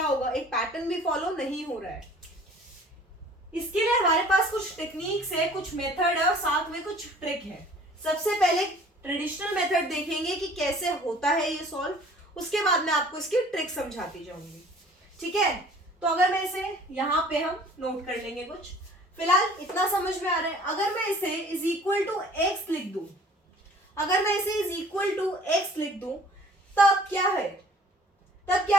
होगा, एक पैटर्न भी फॉलो नहीं हो रहा है। इसके लिए हमारे पास कुछ टेक्निक्स है, कुछ मेथड है और साथ में कुछ ट्रिक है। सबसे पहले ट्रेडिशनल मेथड देखेंगे कि कैसे होता है ये सॉल्व, उसके बाद मैं आपको इसकी ट्रिक समझाती जाऊंगी। ठीक है, तो अगर मैं इसे यहाँ पे हम नोट कर लेंगे कुछ, फिलहाल इतना समझ में आ रहा है। अगर मैं इसे इज इक्वल टू एक्स लिख दूं, अगर मैं इसे इज इक्वल टू एक्स लिख दूं, तब क्या है? तब क्या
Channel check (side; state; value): both; normal; correlation 0.51